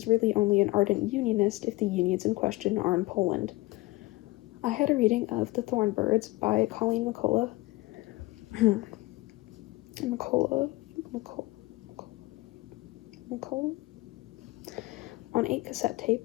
really only an ardent unionist if the unions in question are in Poland. I had a reading of The Thornbirds by Colleen McCullough Macola. On 8 cassette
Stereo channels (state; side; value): quieter; right; 20.5 dB